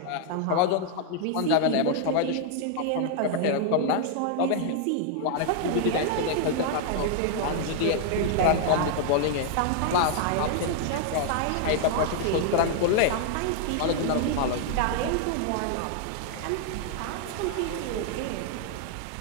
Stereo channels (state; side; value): different; both; correlation 0.00